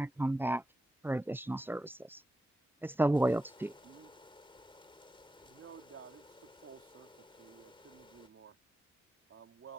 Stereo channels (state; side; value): normal; both; correlation 0.92